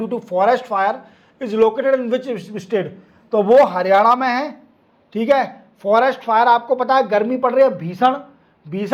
to forest fire is located in which state. तो वो हरियाणा में है। ठीक है, फॉरेस्ट फायर आपको पता है गर्मी पड़ रही है,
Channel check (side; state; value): both; identical; correlation 1.00